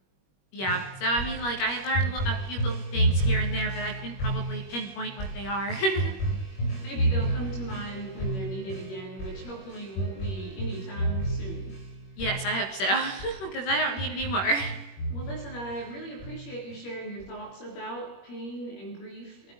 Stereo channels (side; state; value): right; late; 21 ms